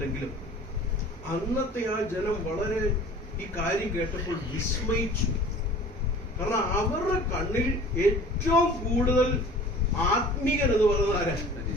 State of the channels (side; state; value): both; normal; correlation 0.45